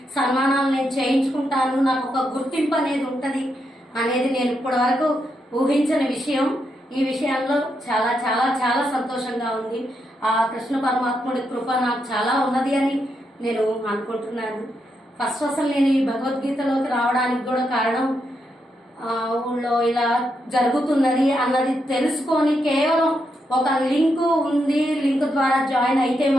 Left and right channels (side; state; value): both; normal; correlation 0.82